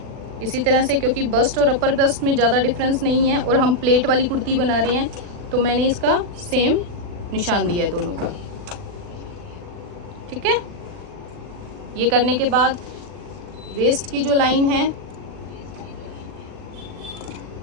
इसी तरह से, क्योंकि बस्ट और अपर बस्ट में ज़्यादा डिफरेंस नहीं है और हम प्लेट वाली कुर्ती बना रहे हैं, तो मैंने इसका सेम निशान दिया है दोनों का, ठीक है। ये करने के बाद वेस्ट की जो लाइन है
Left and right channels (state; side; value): late; left; 40 ms